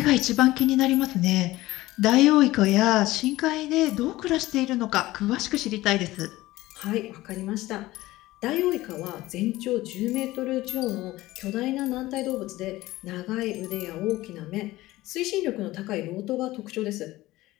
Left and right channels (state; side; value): quieter; right; 17.6 dB